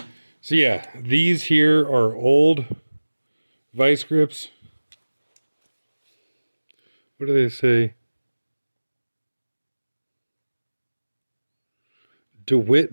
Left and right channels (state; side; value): inverted; both; correlation -1.00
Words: So yeah, these here are old vice grips. What do they say?